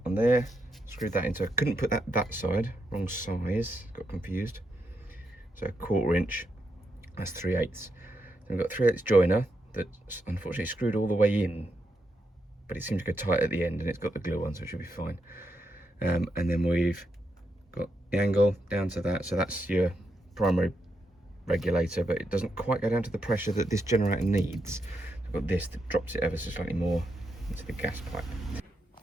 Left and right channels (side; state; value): both; normal; correlation 0.82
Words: on there, screwed that into, I couldn't put that side, wrong size, got confused. So 1/4 inch, that's 3/8. Then we've got 3/8 joiner that's unfortunately screwed all the way in, but it seems to go tight at the end, and it's got the glue on, so it should be fine. And then we've got the angle down to that, so that's your primary regulator, but it doesn't quite go down to the pressure that this generator needs. I've got this that drops it ever so slightly more into the gas pipe.